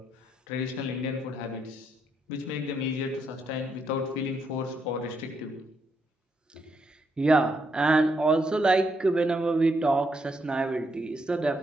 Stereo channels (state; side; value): normal; both; correlation 0.77